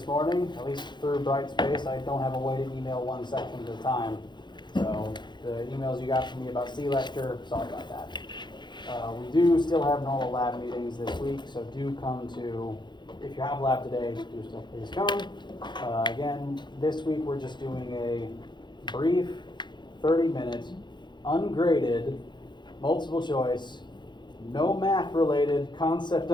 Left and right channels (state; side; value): late; right; 0.22 ms